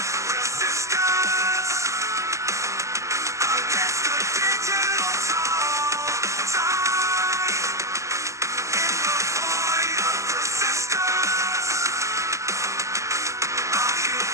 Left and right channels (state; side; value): late; left; 0.15 ms